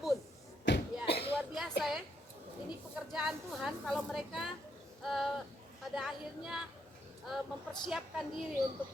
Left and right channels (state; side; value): normal; both; correlation 0.76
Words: Ya, luar biasa ya. Ini pekerjaan Tuhan kalau mereka pada akhirnya mempersiapkan diri untuk